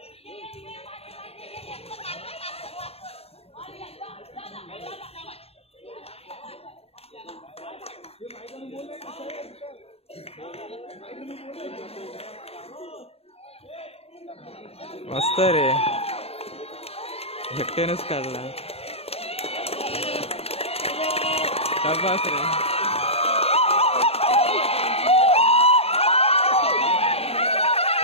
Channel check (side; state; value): right; late; 0.29 ms